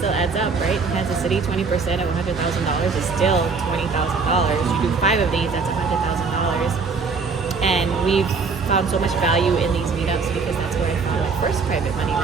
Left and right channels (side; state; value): left; quieter; 4.8 dB